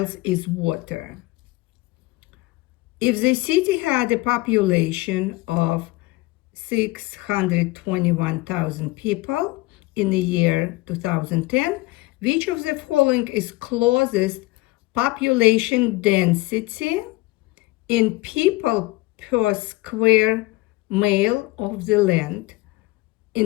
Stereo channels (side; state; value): right; quieter; 20.8 dB